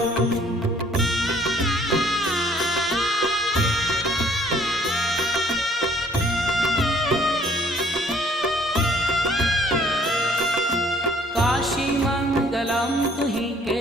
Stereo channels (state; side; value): normal; both; correlation 0.59